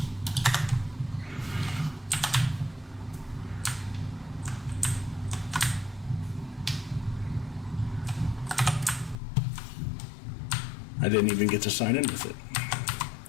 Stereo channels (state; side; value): drops out; right; at 9.2 s